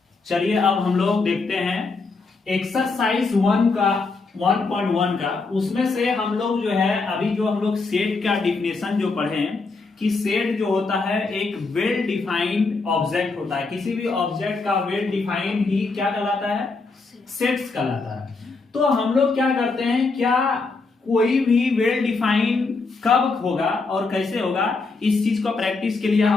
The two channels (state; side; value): quieter; right; 4.0 dB